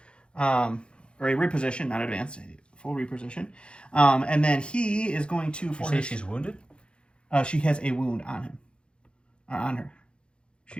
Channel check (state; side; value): late; right; 0.056 ms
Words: Or a reposition, not advance, a full reposition. And then he is going to... You say she's wounded? She has a wound on him. On her.